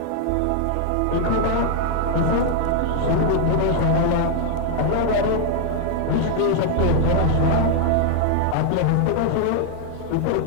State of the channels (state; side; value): different; both; correlation 0.00